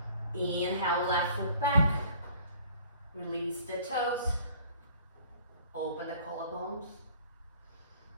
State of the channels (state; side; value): inverted; both; correlation -0.53